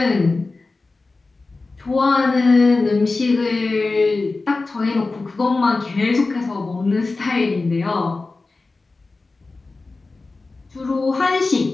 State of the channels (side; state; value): right; quieter; 3.6 dB